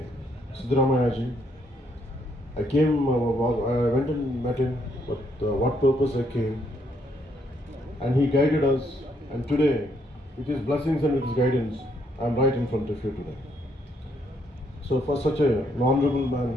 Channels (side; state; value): both; normal; correlation 0.72